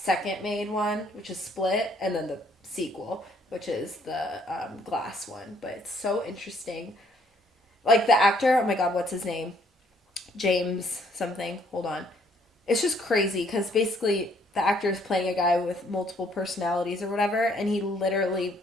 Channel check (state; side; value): normal; both; correlation 0.65